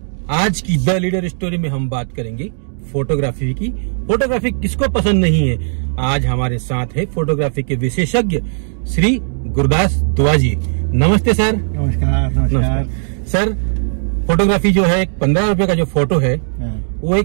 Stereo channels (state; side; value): silent; left; digital silence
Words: आज की the leader story में हम बात करेंगे फोटोग्राफी की। फोटोग्राफी किसको पसंद नहीं है। आज हमारे साथ है फोटोग्राफी के विशेषज्ञ श्री गुरदास दुआ जी। नमस्ते सर। नमस्कार। सर, फोटोग्राफी जो है 15 रुपए का जो फोटो है वो